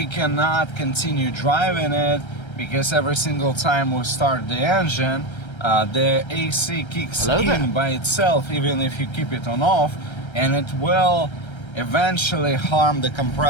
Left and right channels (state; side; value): late; right; 1.3 ms